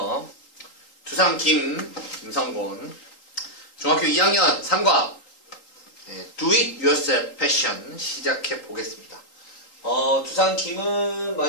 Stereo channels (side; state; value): right; late; 3.8 ms